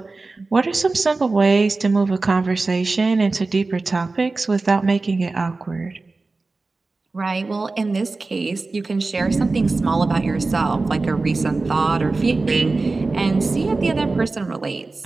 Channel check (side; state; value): left; quieter; 3.6 dB